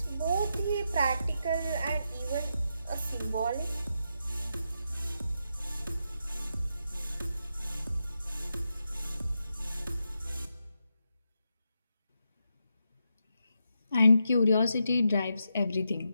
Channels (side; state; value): both; inverted; correlation -0.85